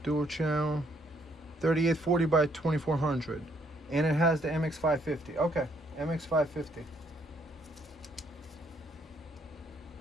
dual channel, 3840 by 2400, and it has the MX550. Okay, MX550.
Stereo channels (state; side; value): normal; both; correlation 0.69